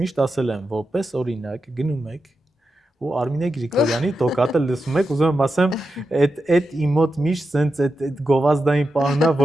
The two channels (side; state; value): both; normal; correlation 0.89